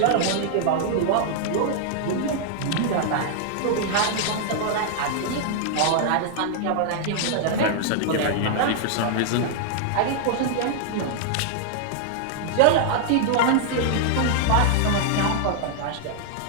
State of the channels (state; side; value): different; both; correlation -0.01